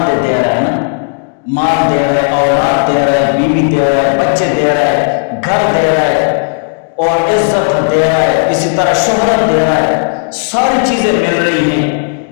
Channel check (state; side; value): silent; right; digital silence